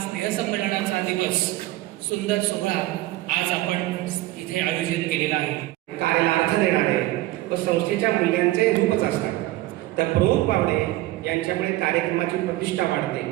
स्नेहसंमेलनाचा दिवस, सुंदर सोहळा आज आपण इथे आयोजित केलेला आहे. कार्याला अर्थ देणारे व संस्थेच्या मूल्यांचे रूपच असतात. तर प्रमुख पाहुणे यांच्यामुळे कार्यक्रमाची प्रतिष्ठा वाढते,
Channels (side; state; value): left; quieter; 17.3 dB